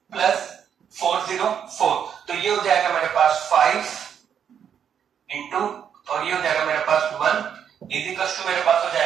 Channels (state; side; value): quieter; left; 8.3 dB